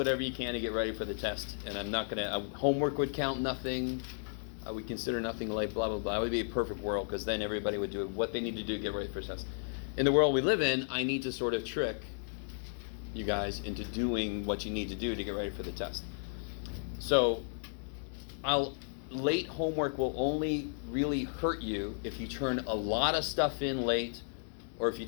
you can to get ready for the test. And I'm not going to, homework would count nothing. I would consider nothing late, blah, blah, blah. It would be a perfect world because then everybody would do what they need to do to get ready for the test. In the world we live in, I need to sort of trick you guys into doing what you need to do to get ready for the test. So late homework will only really hurt you if you turn a lot of stuff in late or if you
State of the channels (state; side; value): silent; right; digital silence